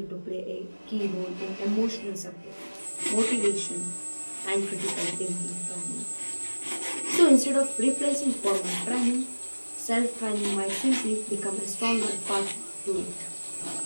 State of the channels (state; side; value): inverted; both; correlation -1.00